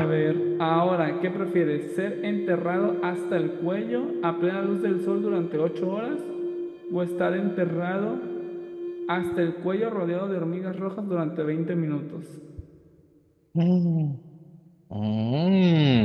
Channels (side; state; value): both; identical; correlation 1.00